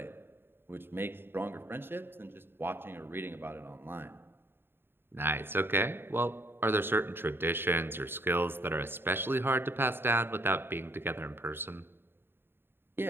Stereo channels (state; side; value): late; left; 0.11 ms